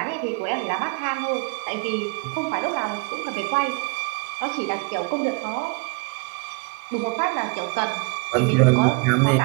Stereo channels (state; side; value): quieter; left; 30.7 dB